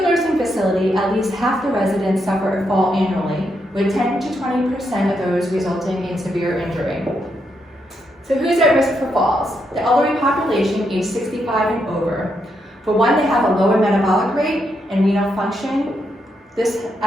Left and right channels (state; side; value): normal; both; correlation 0.80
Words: nursing facility, at least half the residents suffer a fall annually, with 10 to 20% of those resulting in severe injury. So who's at risk for falls? The elderly population aged 65 and over. For one, they have a lower metabolic rate and renal function. This